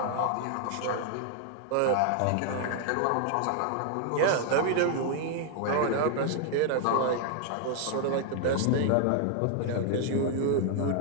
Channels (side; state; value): both; different; correlation 0.00